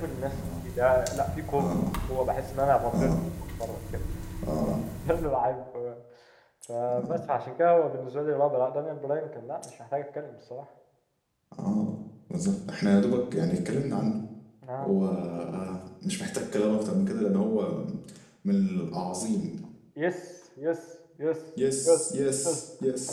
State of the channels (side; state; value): both; identical; correlation 1.00